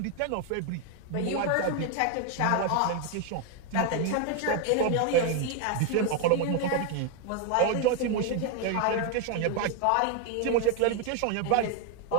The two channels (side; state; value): both; different; correlation 0.01